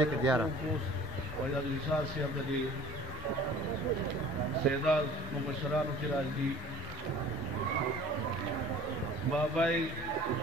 que diara. वैदा विशाल से अब्दी सेदार मुबशरान की राजी बाबाई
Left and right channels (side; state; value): both; normal; correlation 0.47